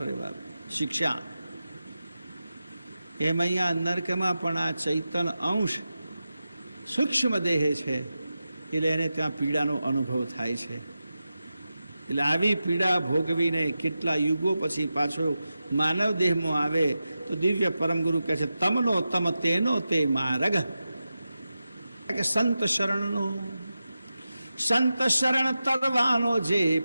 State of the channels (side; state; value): both; inverted; correlation -0.92